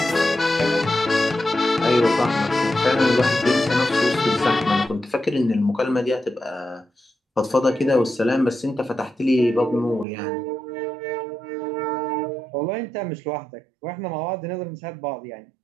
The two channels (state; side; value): drops out; left; at 10.1 s